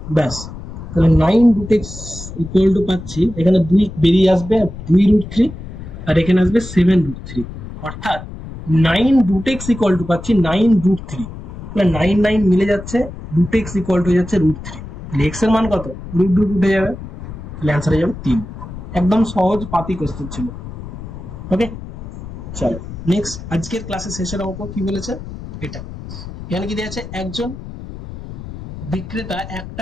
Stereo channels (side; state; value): left; noise; rumble, 12 dB below the sound